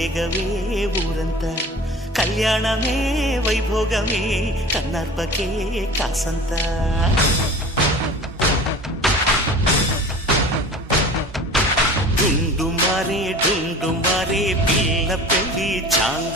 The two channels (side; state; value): both; normal; correlation 0.40